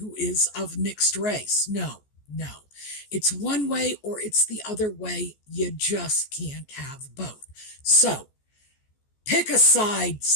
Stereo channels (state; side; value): late; right; 14 ms